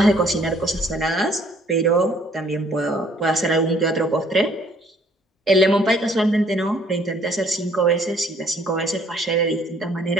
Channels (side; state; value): both; normal; correlation 0.61